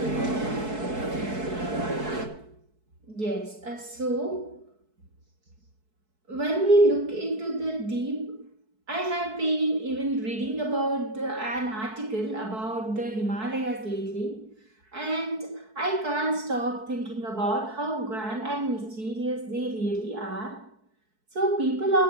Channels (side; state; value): left; late; 4.6 ms